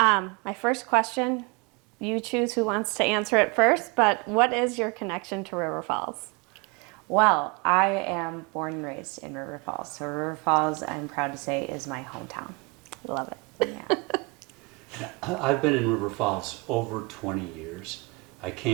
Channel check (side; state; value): left; quieter; 28.3 dB